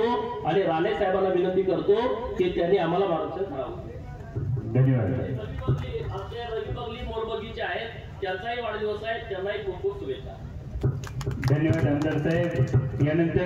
आणि राणे साहेबांना विनंती करतो की त्यांनी आम्हाला मार्गदर्शन करावं. धन्यवाद. आमचे रविबगली मोरबगीचे आहेत, त्यांचाही वाढदिवस आहे, त्यांनाही खूप खूप शुभेच्छा. धन्यवाद आमदार साहेब.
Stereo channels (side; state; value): both; identical; correlation 1.00